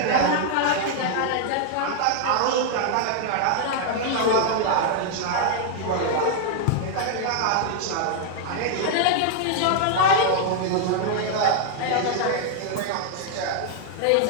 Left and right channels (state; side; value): different; both; correlation 0.00